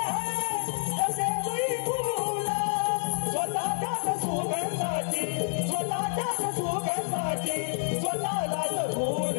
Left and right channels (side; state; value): right; silent; 59 dB below the other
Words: आहे तसे तुई फूल स्वतःच्याच सुगंधाची स्वतःलाच फूल